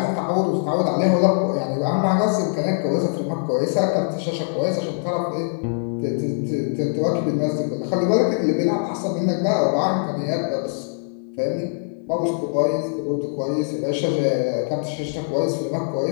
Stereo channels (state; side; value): silent; right; digital silence